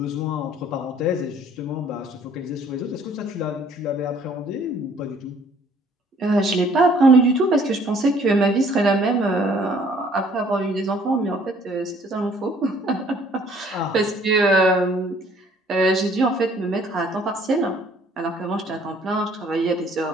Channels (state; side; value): normal; both; correlation 0.58